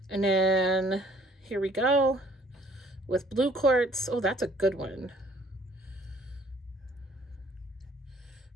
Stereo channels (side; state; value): both; normal; correlation 0.59